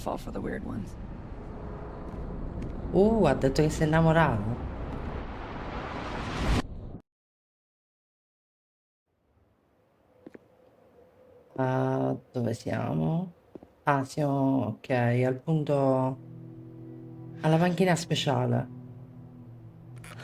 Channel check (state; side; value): identical; both; correlation 1.00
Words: for the weird ones? Ha detto che si è innamorato. Dove siamo? Ah, siamo, ok, al punto, alla panchina speciale.